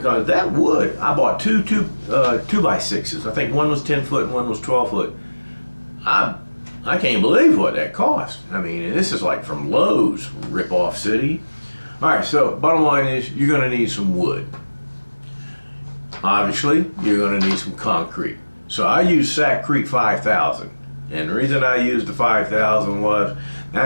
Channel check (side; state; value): both; inverted; correlation -1.00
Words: that wood, I bought two 2x6s. I think one was 10 foot and one was 12 foot. I can't believe what that cost. I mean, this is like from Lowe's, rip-off city. All right, so bottom line is you're going to need some wood. Obviously, you're going to need some concrete. So I used Sac Creek 5000. And the reason I used the 5000 was